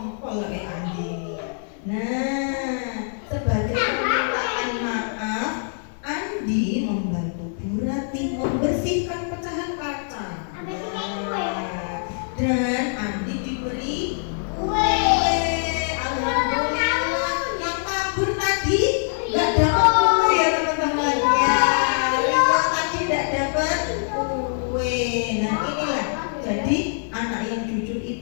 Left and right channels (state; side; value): silent; right; digital silence